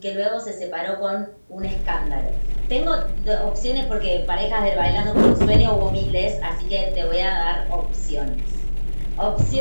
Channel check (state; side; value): inverted; both; correlation -1.00